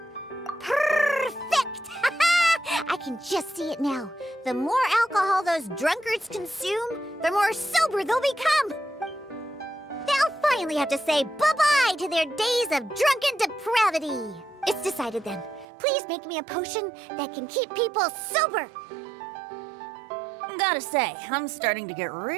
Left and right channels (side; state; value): left; drops out; at 15.7 s